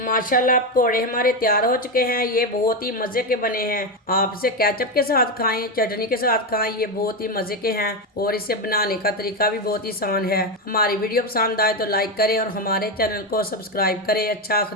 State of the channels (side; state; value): both; normal; correlation 0.11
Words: पकोड़े हमारे तैयार हो चुके हैं। ये बहुत ही मज़े के बने हैं। आप इसे केचप के साथ खाएं, चटनी के साथ खाएं, ये बहुत ही मज़े के हैं और इसे बनाने का तरीका भी बहुत ही आसान है। हमारी वीडियो पसंद आए तो लाइक करें और हमारे चैनल को सब्सक्राइब करें। अच्छा,